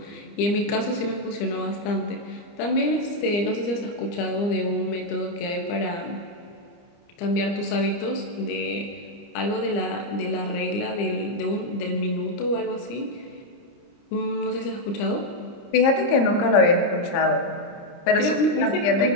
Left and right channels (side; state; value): right; late; 30 ms